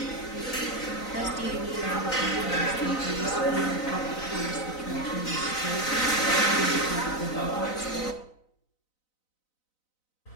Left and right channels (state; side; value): late; right; 4.0 ms